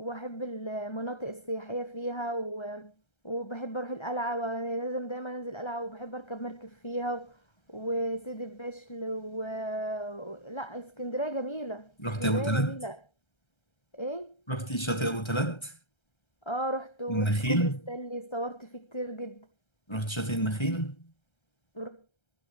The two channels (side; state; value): right; late; 1.3 ms